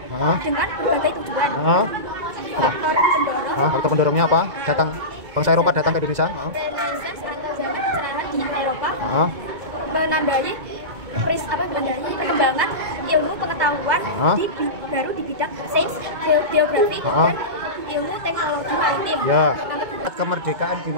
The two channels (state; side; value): late; left; 2.2 ms